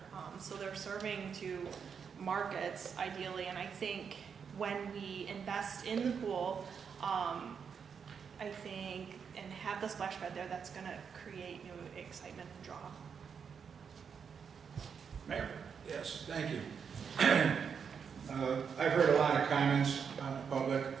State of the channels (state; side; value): quieter; left; 6.6 dB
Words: so they're serving to markets ideally. And I think when we invest in the pool, I think, and have the splash pad there, that's going to create new excitement and draw. Mayor? Yes, thank you. I've heard a lot of comments on the public.